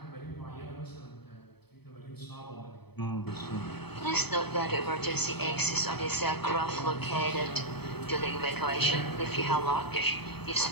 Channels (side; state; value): right; late; 0.98 ms